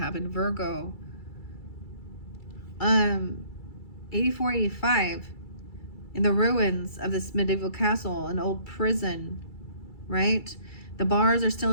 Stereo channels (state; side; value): late; right; 2.3 ms